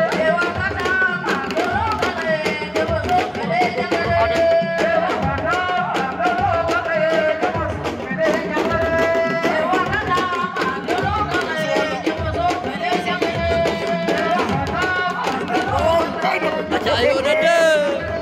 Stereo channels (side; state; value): both; identical; correlation 1.00